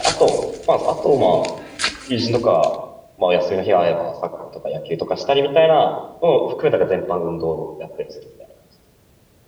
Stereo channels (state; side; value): identical; both; correlation 1.00